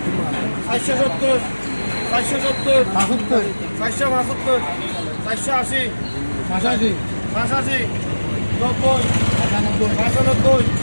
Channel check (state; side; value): inverted; both; correlation -1.00